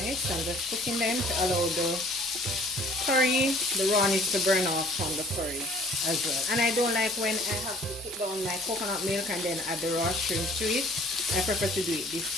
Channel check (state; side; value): normal; both; correlation 0.53